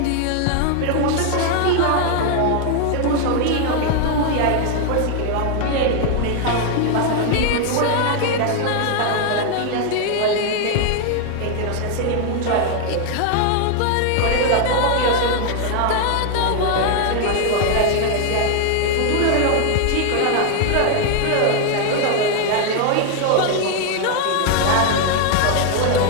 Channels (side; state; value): both; different; correlation 0.00